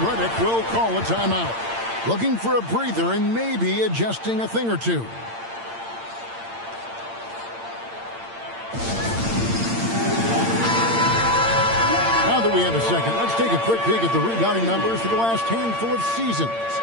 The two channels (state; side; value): late; left; 8.8 ms